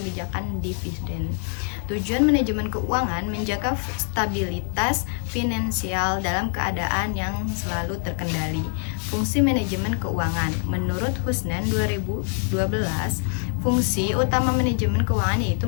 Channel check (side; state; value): right; silent; 60 dB below the other